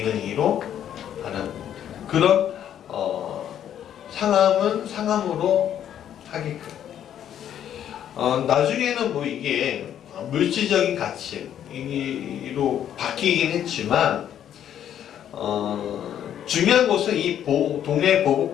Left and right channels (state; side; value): quieter; right; 10.2 dB